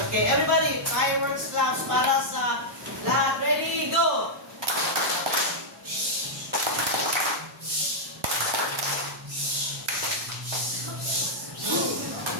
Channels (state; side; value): normal; both; correlation -0.06